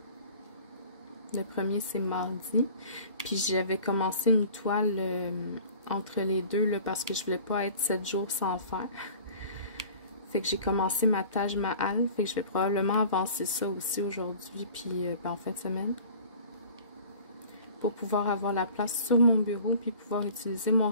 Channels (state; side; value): inverted; both; correlation -0.45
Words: Le 1er, c'est mardi. Puis j'avais commencé une toile entre les deux là, parce que je voulais pas être 7 jours sans faire. Fait que j'ai commencé ma Taj Mahal. Fait que je vais probablement avancer ça aussi aujourd'hui, puis en fin de semaine. Pour pouvoir avoir la place sur mon bureau, puis pouvoir utiliser mon